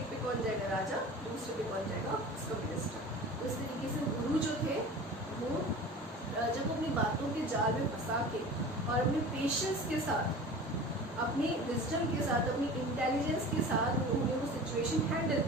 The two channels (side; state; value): both; normal; correlation 0.37